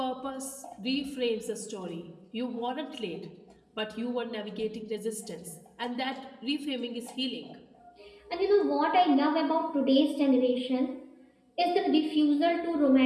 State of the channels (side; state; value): both; identical; correlation 1.00